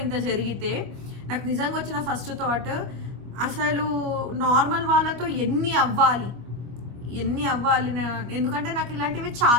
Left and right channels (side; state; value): left; late; 25 ms